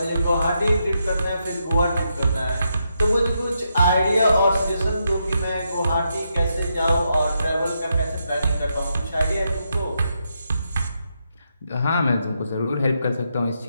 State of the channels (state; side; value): inverted; both; correlation -0.82